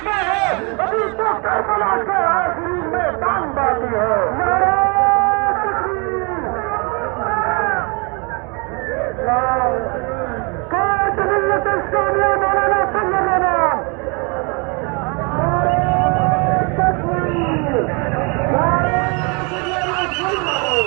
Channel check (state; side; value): quieter; left; 32.1 dB